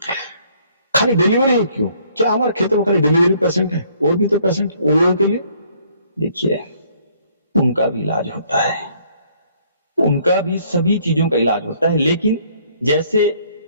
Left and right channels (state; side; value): inverted; both; correlation -0.63